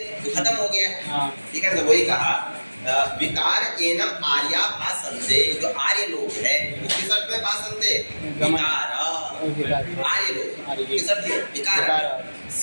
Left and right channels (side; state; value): both; inverted; correlation -1.00